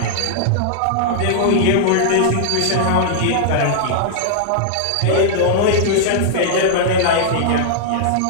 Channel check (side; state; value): both; different; correlation -0.01